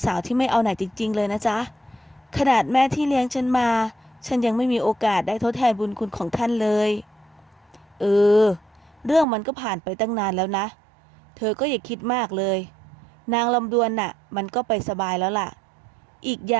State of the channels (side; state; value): left; drops out; at 9.2 s